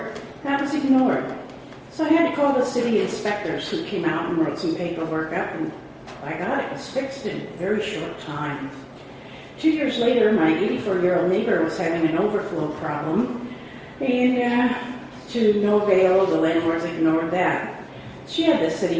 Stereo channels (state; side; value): identical; both; correlation 1.00